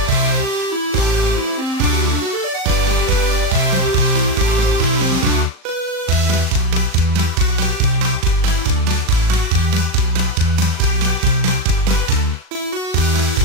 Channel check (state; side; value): late; left; 38 ms